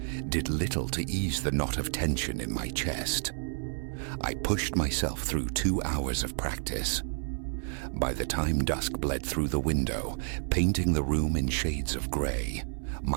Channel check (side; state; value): left; silent; 58 dB below the other